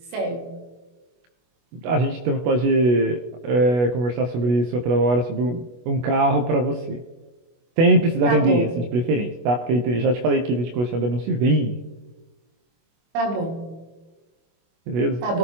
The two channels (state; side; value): late; left; 25 ms